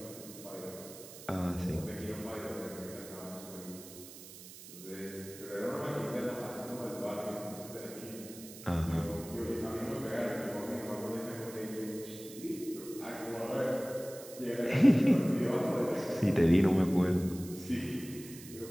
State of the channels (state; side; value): noise; right; hiss, 15 dB below the sound